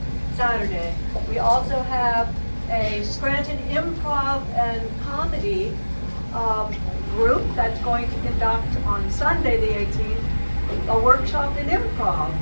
Saturday. We also have a Scranton Improv and Comedy group that's going to conduct on Sunday the 18th a workshop in improv,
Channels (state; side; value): inverted; both; correlation -1.00